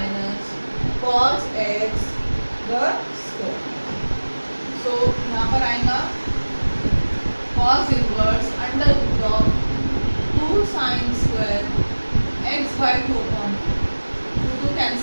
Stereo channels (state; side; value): inverted; both; correlation -1.00